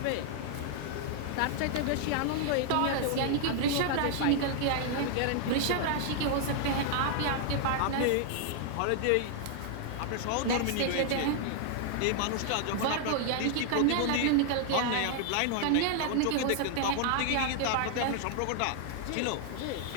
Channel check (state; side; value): different; both; correlation 0.00